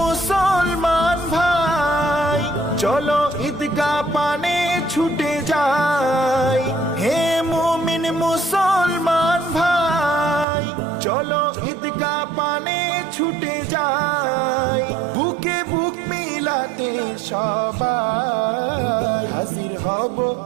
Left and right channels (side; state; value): left; drops out; at 10.5 s